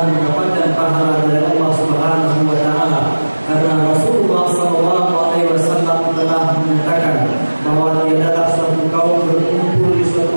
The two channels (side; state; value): both; inverted; correlation -1.00